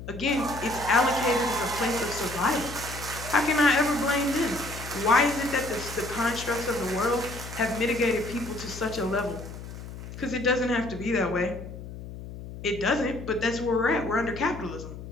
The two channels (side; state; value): left; noise; hum, 11 dB below the sound